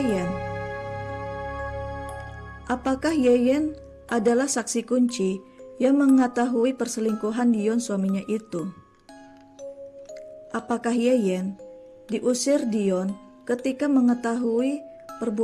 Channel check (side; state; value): both; identical; correlation 1.00